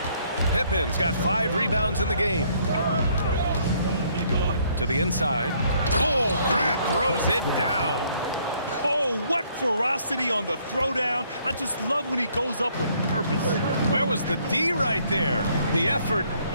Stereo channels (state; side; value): inverted; both; correlation -0.66